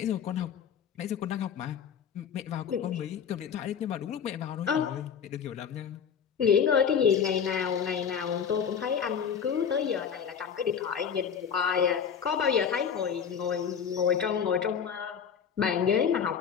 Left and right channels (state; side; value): quieter; right; 7.4 dB